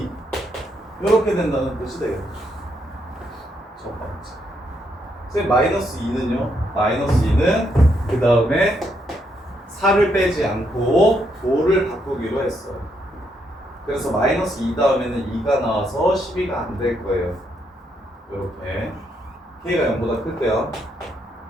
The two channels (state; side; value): normal; both; correlation 0.76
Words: 이렇게 된다는 뜻이 되겠죠. 첫 번째. 선생님 마이너스 2는요. 마이너스 2는 그 다음에 4를 빼지 않고 5를 바꾸기로 했어요. 그래서 마이너스 2 다음에는 2가 나와서 12가 안 될 거예요. 이렇게 k가 0보다 클 때요.